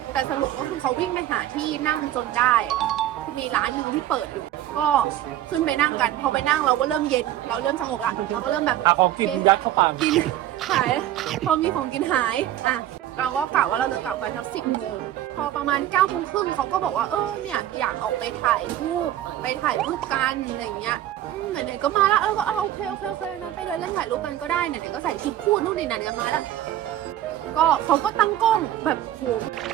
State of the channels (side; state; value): left; quieter; 12.8 dB